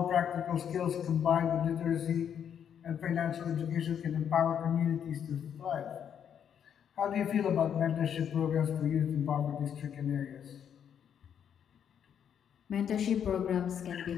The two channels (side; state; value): right; quieter; 8.5 dB